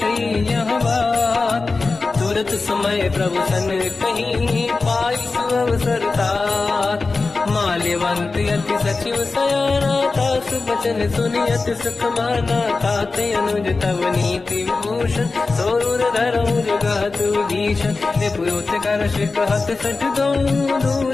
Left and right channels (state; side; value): quieter; right; 3.9 dB